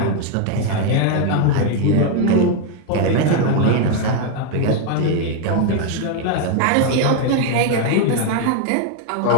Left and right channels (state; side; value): different; both; correlation 0.01